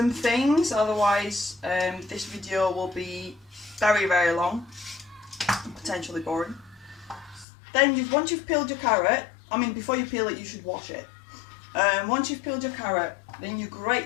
things, otherwise this video will be very, very long and potentially boring. Then once you've peeled your carrot, I mean before you peel it you should wash it. Once you've peeled your carrot, then you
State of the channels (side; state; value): right; drops out; at 7.5 s